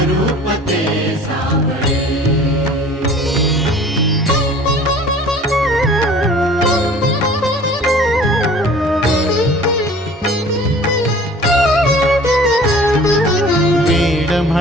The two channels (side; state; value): both; normal; correlation 0.47